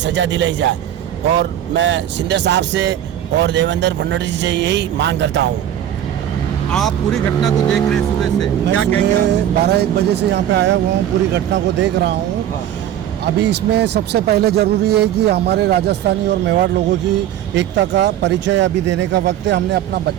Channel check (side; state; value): left; quieter; 11.1 dB